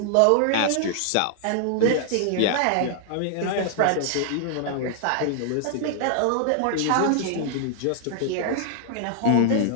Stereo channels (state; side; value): different; both; correlation -0.01